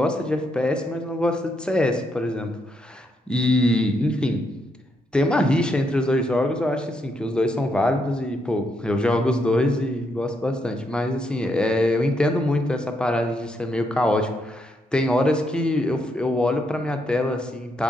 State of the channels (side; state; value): both; normal; correlation 0.78